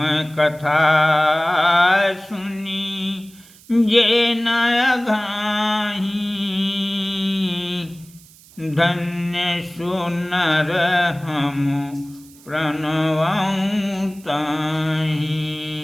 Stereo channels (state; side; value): noise; right; hiss, 24 dB below the sound